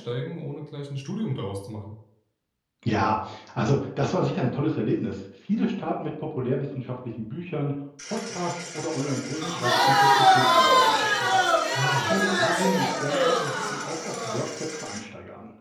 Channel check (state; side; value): identical; both; correlation 1.00